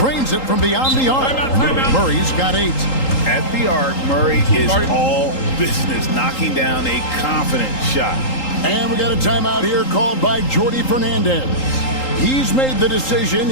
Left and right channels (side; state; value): right; late; 3.8 ms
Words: it from beyond the arc. Murray's got 8. At the arc, Murray is all business, knocking down a confident shot. And we got a timeout here called by Jordi Fernandez. He's made the decision.